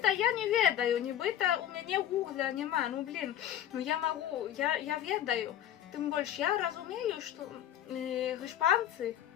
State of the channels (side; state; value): right; quieter; 11.1 dB